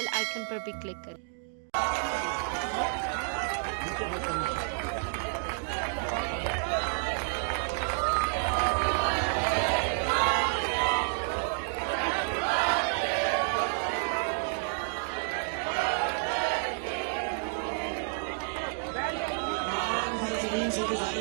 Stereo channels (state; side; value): silent; left; 57 dB below the other